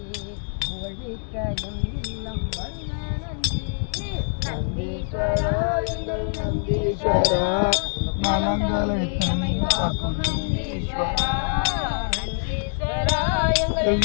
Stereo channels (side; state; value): right; silent; digital silence